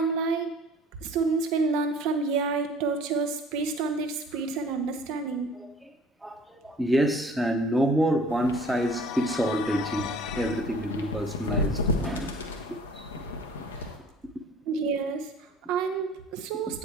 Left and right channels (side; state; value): both; normal; correlation 0.50